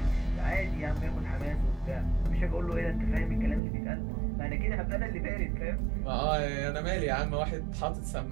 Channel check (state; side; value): drops out; left; at 3.6 s